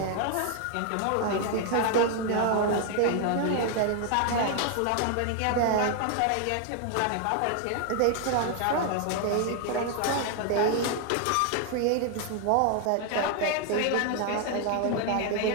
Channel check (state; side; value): different; both; correlation 0.00